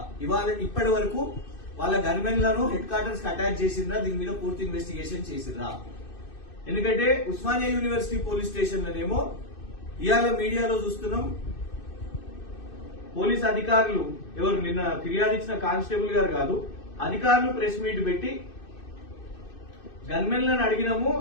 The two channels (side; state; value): right; late; 2.6 ms